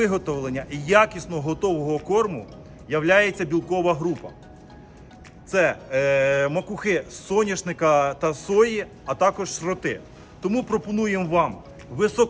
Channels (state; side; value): identical; both; correlation 1.00